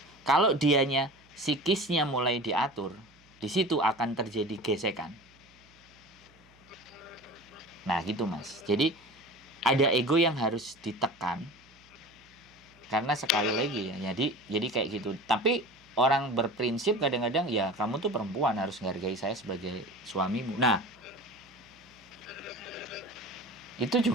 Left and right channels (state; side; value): noise; right; hum, 29 dB below the sound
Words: kalau dianya psikisnya mulai diatur, di situ akan terjadi gesekan. Nah gitu Mas. Jadi ada ego yang harus ditekan. Karena sekali lagi ya, jadi kayak gitu. Tapi orang berprinsip kadang-kadang ya kamu tuh perempuan harus menghargai saya sebagai suamimu. Nah, itu